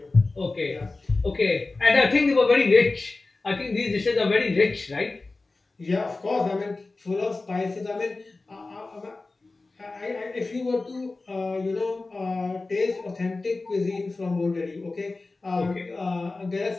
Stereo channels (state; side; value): quieter; right; 3.4 dB